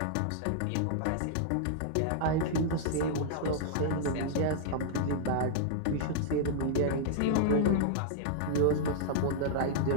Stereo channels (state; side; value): different; both; correlation -0.01